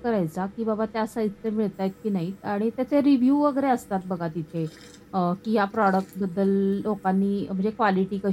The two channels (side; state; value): both; identical; correlation 1.00